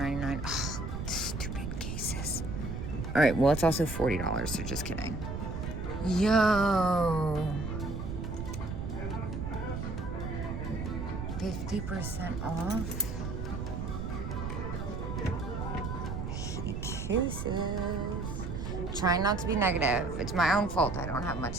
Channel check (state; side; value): noise; right; rumble, 4 dB below the sound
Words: Oh, stupid cases. All right, well, it's also $40, so just kidding. Yo. 50% off. Cases. Trying not to be negative. It's my own fault. I don't have